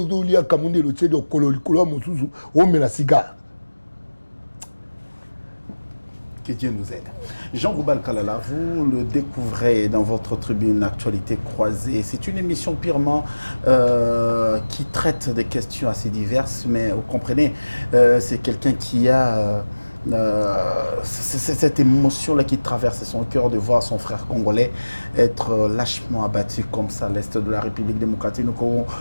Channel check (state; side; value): inverted; both; correlation -1.00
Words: lia kamunde lo tsedo kololi kolo mosusu o mela cigare. Que Dieu nous aide. Jean Goubal Kalala, vous le découvrez dans votre tribune Actualité croisée. C'est une émission purement qui traite des questions assez diverses, mais vous comprenez, c'est quelqu'un qui a cette émotion-là qui traverse son cœur de voir son frère congolais être lâchement abattu comme ça à l'est de la République démocratique.